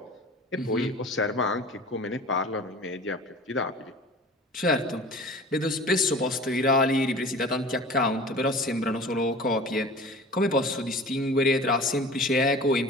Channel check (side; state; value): both; normal; correlation 0.40